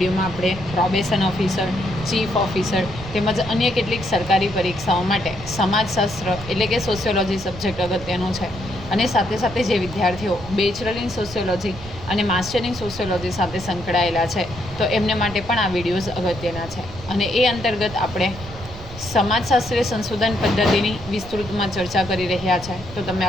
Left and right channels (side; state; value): right; noise; rumble, 14 dB below the sound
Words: આપણે પ્રોબેશન ઓફિસર, ચીફ ઓફિસર તેમજ અન્ય કેટલીક સરકારી પરીક્ષાઓ માટે સમાજશાસ્ત્ર એટલે કે સોશિયોલોજી સબ્જેક્ટ અગત્યનો છે અને સાથે સાથે જે વિદ્યાર્થીઓ બેચલર ઇન સોશિયોલોજી અને માસ્ટર ઇન સોશિયોલોજી સાથે સંકળાયેલા છે તો એમને માટે પણ આ વિડીયોઝ અગત્યના છે. અને એ અંતર્ગત આપણે સમાજશાસ્ત્રીય સંશોધન પદ્ધતિની વિસ્તૃતમાં ચર્ચા કરી રહ્યા છે. તો તમે